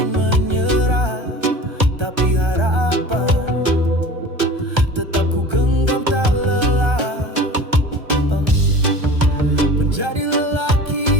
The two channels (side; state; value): left; late; 1.3 ms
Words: menyerah, tapi harapan tetap ku genggam tak lelah. Menjadi